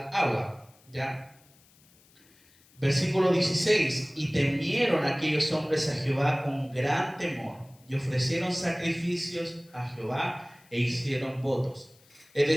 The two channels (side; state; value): left; noise; hiss, 29 dB below the sound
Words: agua. ¿Ya? Versículo 16. Y temieron aquellos hombres a Jehová con gran temor, y ofrecieron sacrificios a Jehová e hicieron votos. Es